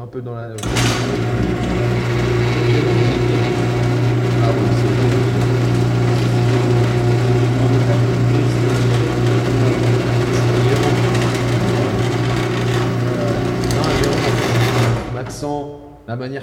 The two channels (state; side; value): identical; both; correlation 1.00